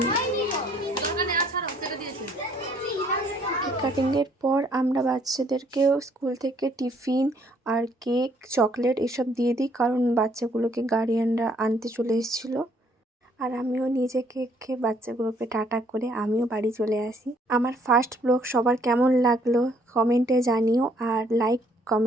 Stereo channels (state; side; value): normal; both; correlation 0.64